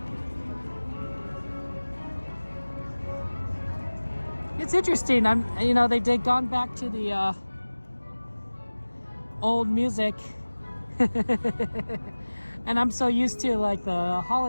It's interesting. They've gone back to the old music, and I'm so used to like the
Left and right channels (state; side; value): inverted; both; correlation -1.00